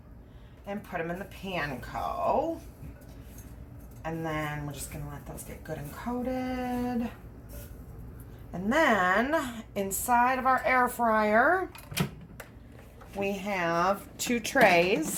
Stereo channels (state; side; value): identical; both; correlation 1.00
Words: and put them in the panko. And then we're just going to let those get good and coated. And then inside of our air fryer, we have 2